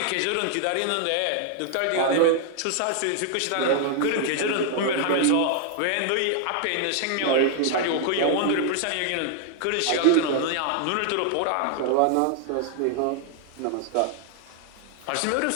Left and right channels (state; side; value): different; both; correlation 0.00